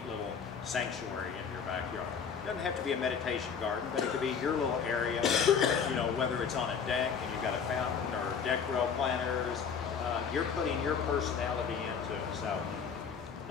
little sanctuary in your backyard. It doesn't have to be a meditation garden, but it could be your little area, you know, whether it's on a deck and you've got a fountain or deck rail planters, you're putting your personality into it. So,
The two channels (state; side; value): quieter; right; 6.6 dB